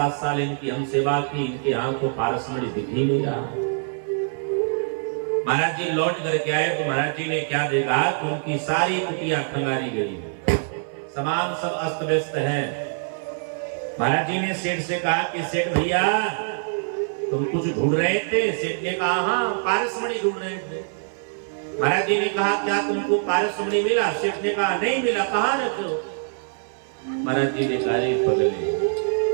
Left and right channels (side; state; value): left; silent; 59 dB below the other